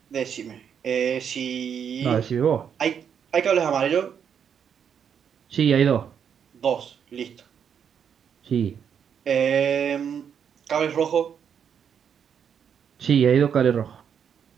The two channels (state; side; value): quieter; left; 7.8 dB